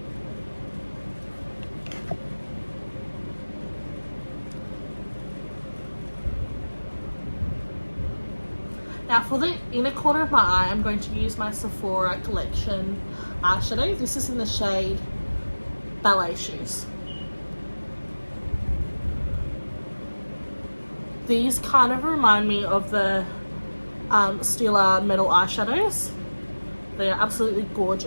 Now for the inner corner of my eye, I'm going to use my Sephora Collection eyeshadow. This is in the shade Ballet Shoes. These kind of remind me of the Stila Metal eyeshadows. They are absolutely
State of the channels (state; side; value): inverted; both; correlation -1.00